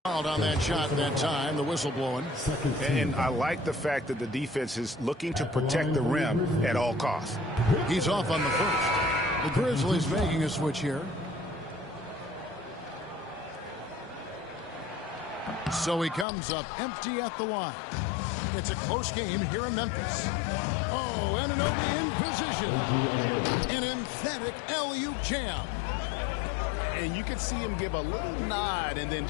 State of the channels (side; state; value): right; drops out; at 16.2 s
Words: on that shot that time, the whistle blowing. And I like the fact that the defense is looking to protect the rim at all costs. He's off on the first. The Grizzlies making a switch here. So he comes up empty at the line. It's a close game here in Memphis. Oh, Anunoby in position. An emphatic alley-oop jam. And you could see him give a little nod and then